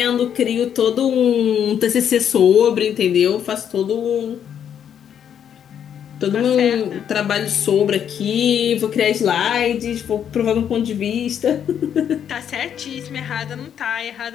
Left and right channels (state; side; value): quieter; right; 8.9 dB